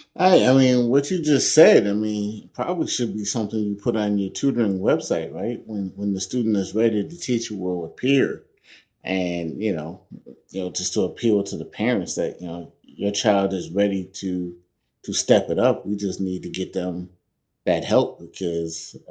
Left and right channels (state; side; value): identical; both; correlation 1.00